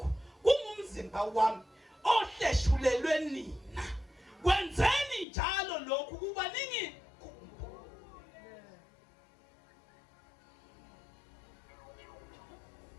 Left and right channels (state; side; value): drops out; right; at 5.2 s